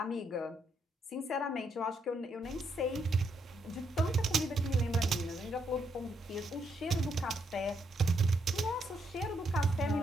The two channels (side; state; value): both; normal; correlation 0.77